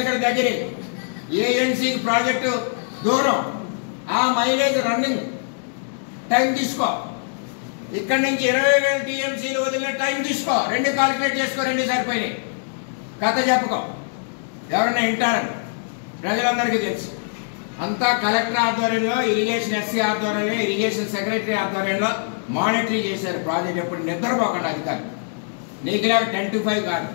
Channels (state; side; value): silent; right; digital silence